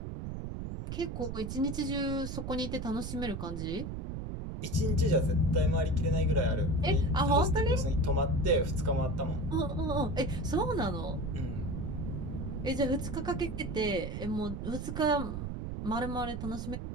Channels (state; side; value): noise; right; rumble, 5 dB below the sound